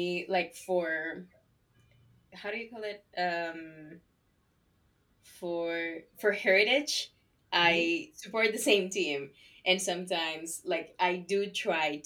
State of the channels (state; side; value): identical; both; correlation 1.00